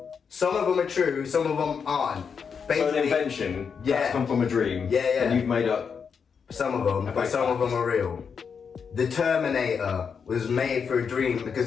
Some of them are true, some of them aren't. Basically, so an invention that's come from a dream. Yeah. And you've made up some of them, but some of them are real. The Terminator was made for a dream because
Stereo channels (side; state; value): right; quieter; 6.3 dB